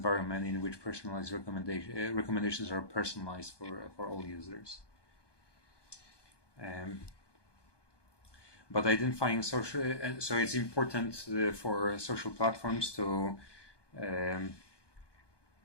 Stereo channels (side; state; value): right; late; 1.2 ms